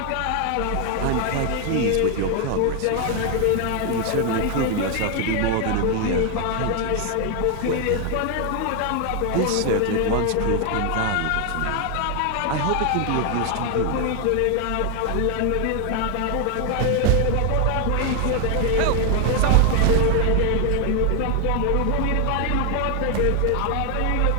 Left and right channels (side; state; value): both; different; correlation 0.00